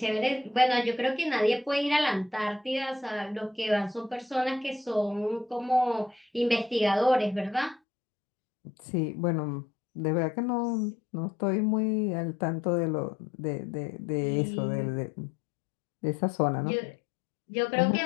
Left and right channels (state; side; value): drops out; right; at 7.8 s